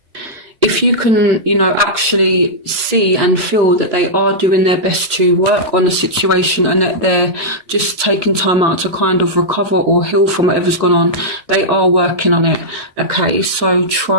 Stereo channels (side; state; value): left; late; 1.8 ms